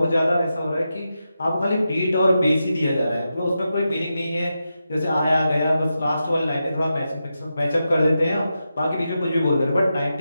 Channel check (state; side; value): inverted; both; correlation -0.89